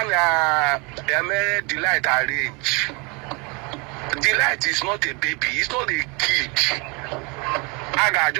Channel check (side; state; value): left; quieter; 30.3 dB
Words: Delight arrange. Delight is not a baby, it's not a kid. I got